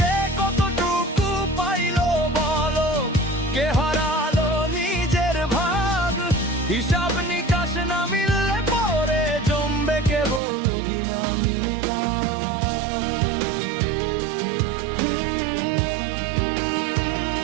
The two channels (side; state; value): left; drops out; at 10.4 s